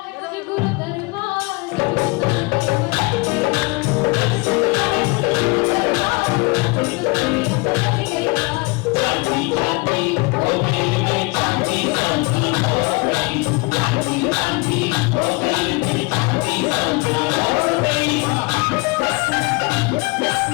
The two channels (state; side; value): quieter; right; 27.5 dB